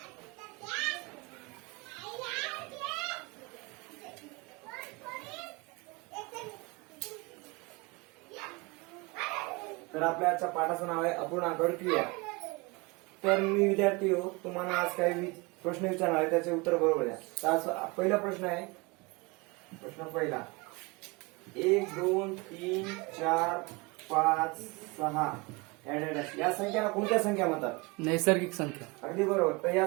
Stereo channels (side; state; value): left; quieter; 26.3 dB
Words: तर आपल्या आजच्या पाठाचं नाव आहे अपूर्णांकावरील क्रिया. तर मी विद्यार्थी हो, तुम्हाला आज काही प्रश्न विचारणार आहे, त्याचे उत्तर बरोबर द्या. तर आज पहिला प्रश्न आहे. प्रश्न पहिला, 1 2 3 4 5 6 या संख्यांना कोणत्या संख्या म्हणतात? नैसर्गिक संख्या. अगदी बरोबर. तर या